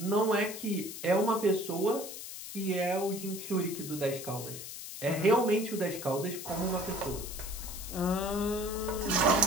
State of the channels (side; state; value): left; noise; hiss, 10 dB below the sound